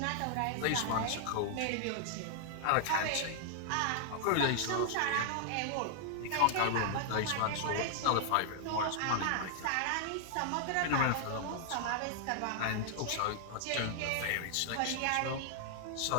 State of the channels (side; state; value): both; different; correlation 0.00